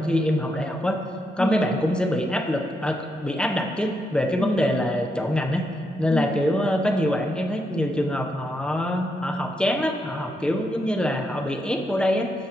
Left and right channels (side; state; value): both; normal; correlation 0.81